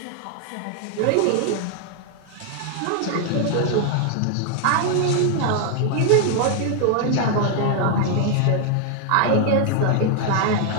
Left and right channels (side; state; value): both; different; correlation 0.00